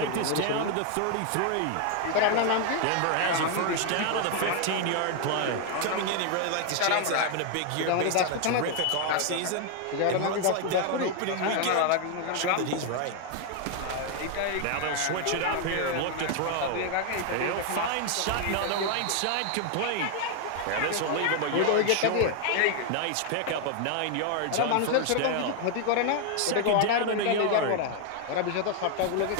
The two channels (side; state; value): both; different; correlation 0.00